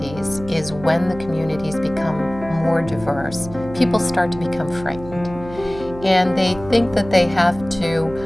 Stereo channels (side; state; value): right; noise; hum, 15 dB below the sound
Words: is when the communities become more diverse, people start to become frightened. And they think that they have to,